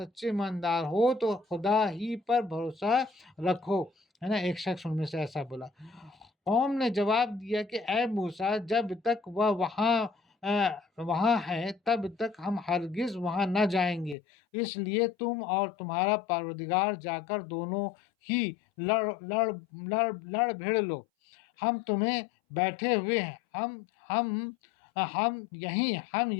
ایماندار ہو تو خدا ہی پر بھروسہ رکھو، ہے نا۔ ایک شخص ان میں سے ایسا بولا۔ قوم نے جواب دیا کہ اے موسیٰ، جب تک وہ وہاں ہے تب تک ہم ہرگز وہاں نہ جائیں گے، اس لیے تم اور تمہارا پروردگار جا کر دونوں ہی لڑ بھڑ لو، ہم تمہیں بیٹھے ہوئے ہیں، ہم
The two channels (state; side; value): drops out; right; at 14.2 s